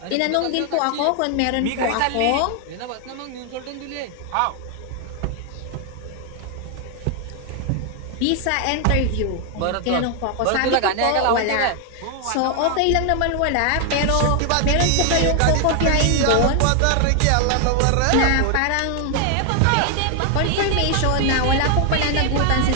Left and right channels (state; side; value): different; both; correlation 0.00